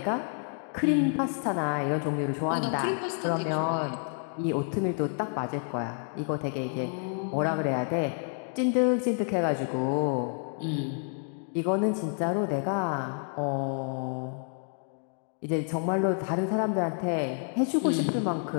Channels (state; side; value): silent; right; 55 dB below the other